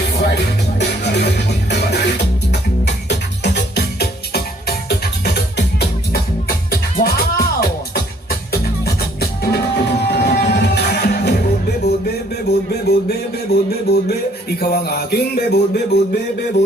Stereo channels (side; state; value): both; normal; correlation 0.62